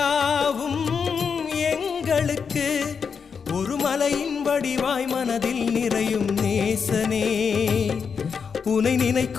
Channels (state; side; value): quieter; right; 6.1 dB